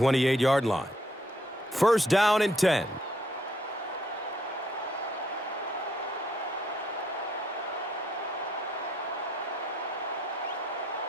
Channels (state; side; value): normal; both; correlation 0.70